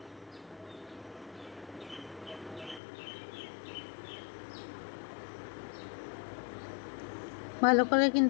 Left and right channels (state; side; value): drops out; right; at 2.8 s